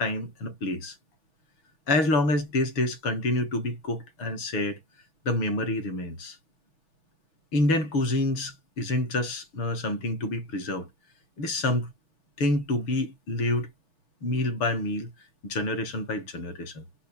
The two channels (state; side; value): late; right; 6.2 ms